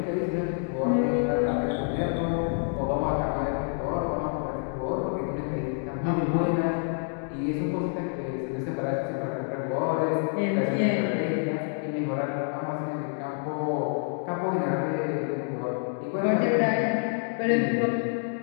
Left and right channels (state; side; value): silent; right; 57 dB below the other